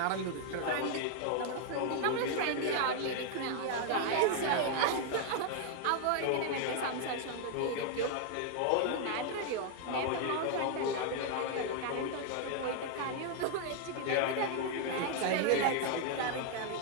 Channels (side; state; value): both; different; correlation 0.00